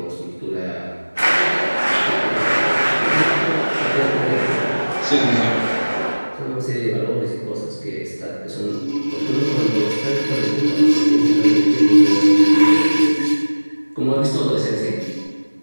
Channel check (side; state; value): both; inverted; correlation -1.00